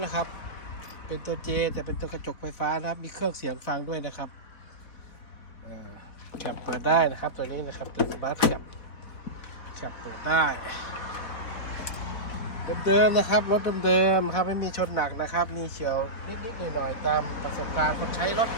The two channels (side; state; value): right; late; 4.1 ms